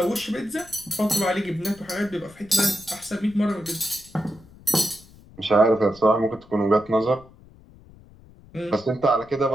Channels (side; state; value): left; noise; rumble, 23 dB below the sound